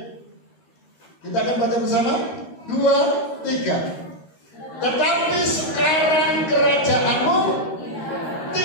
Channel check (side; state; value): right; late; 13 ms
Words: kita akan baca bersama 2, 3. Tetapi sekarang kerajaanmu